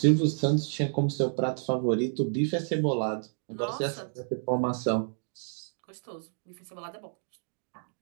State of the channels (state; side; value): silent; left; digital silence